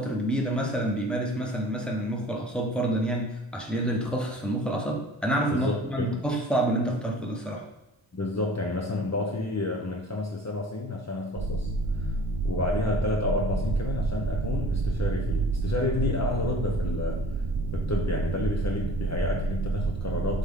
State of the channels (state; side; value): normal; both; correlation 0.47